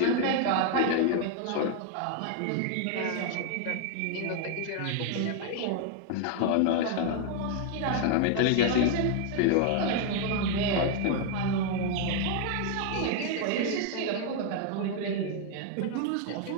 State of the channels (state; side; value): different; both; correlation 0.00